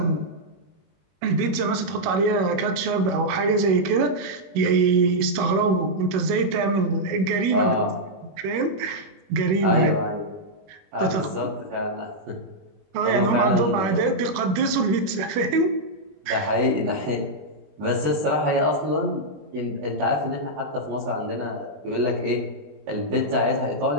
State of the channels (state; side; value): late; left; 21 ms